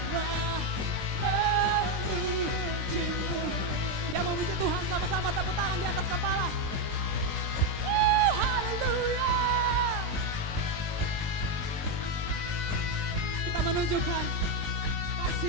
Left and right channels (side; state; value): left; late; 20 ms